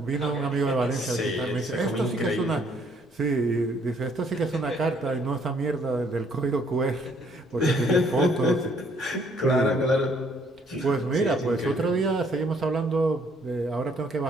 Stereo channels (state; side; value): normal; both; correlation 0.65